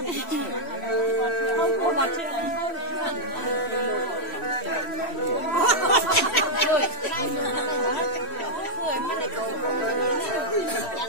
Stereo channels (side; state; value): right; late; 3.1 ms